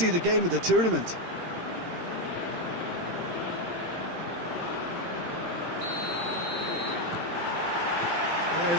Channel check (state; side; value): late; left; 18 ms